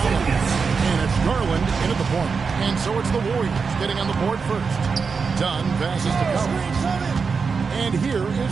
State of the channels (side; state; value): left; quieter; 5.2 dB